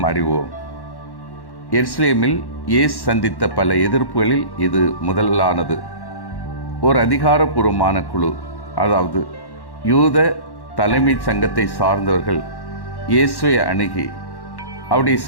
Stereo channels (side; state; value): right; late; 1.1 ms